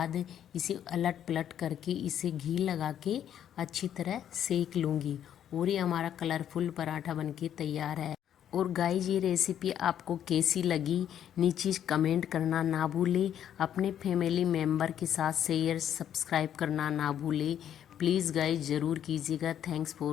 इसे अलट पलट करके इसे घी लगा के अच्छी तरह सेक लूँगी और ये हमारा कलरफुल पराठा बनके तैयार है। और गाइज ये रेसिपी आपको कैसी लगी नीचे कमेंट करना ना भूलें। अपने फैमिली मेम्बर के साथ शेयर सब्सक्राइब करना ना भूलें। प्लीज़ गाइज ज़रूर कीजिएगा। Thanks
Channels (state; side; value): quieter; right; 10.0 dB